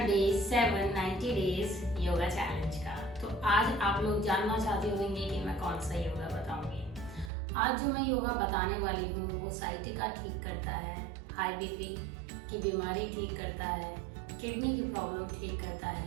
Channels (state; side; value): drops out; left; at 7.3 s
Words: डे 7 90 डेज योगा चैलेंज का। तो आज आप लोग जानना चाहते होंगे कि मैं कौन सा योगा बताऊंगी। आज जो मैं योगा बताने वाली हूँ वो साइटिका ठीक करता है, हाई बीपी की बीमारी ठीक करता है, किडनी की प्रॉब्लम ठीक करता